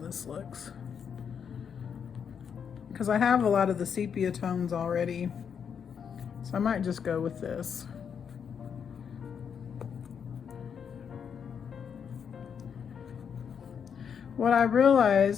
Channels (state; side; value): quieter; right; 7.3 dB